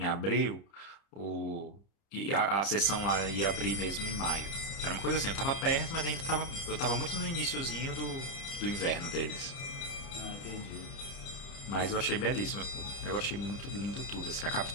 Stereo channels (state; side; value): late; right; 30 ms